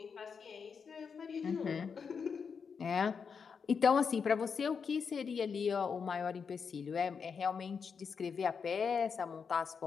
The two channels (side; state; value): right; quieter; 6.0 dB